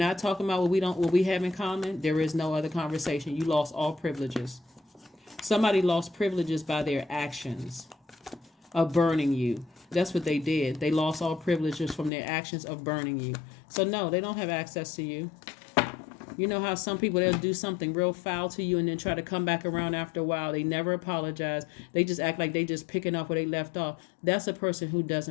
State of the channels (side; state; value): right; drops out; at 12.1 s